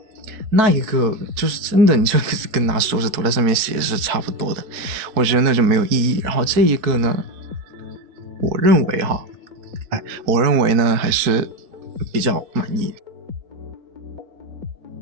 那一个就是真的你就跟拿手指头在上面写是差不多的，我觉得那就没有意义。然后这一个呢，我认为呢还是比较满意。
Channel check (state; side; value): late; left; 4.6 ms